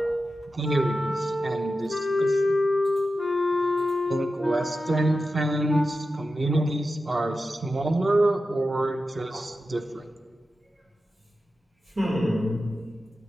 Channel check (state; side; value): normal; both; correlation 0.92